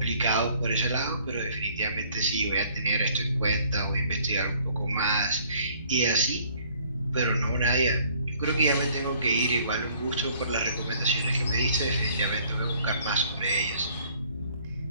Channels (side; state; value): both; inverted; correlation -0.59